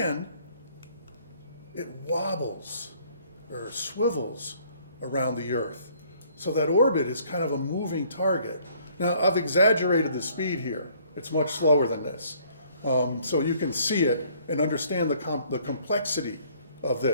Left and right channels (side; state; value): both; inverted; correlation -0.61